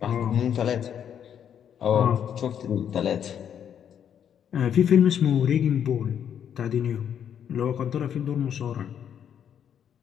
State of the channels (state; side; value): quieter; right; 8.8 dB